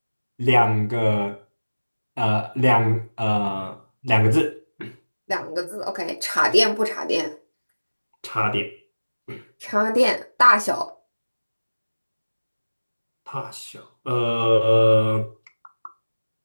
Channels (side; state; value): both; inverted; correlation -1.00